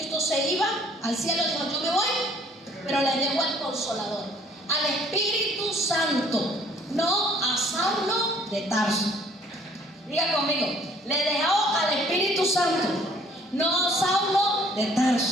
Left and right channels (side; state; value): both; normal; correlation 0.58